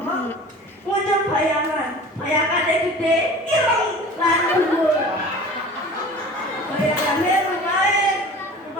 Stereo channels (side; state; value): both; normal; correlation 0.41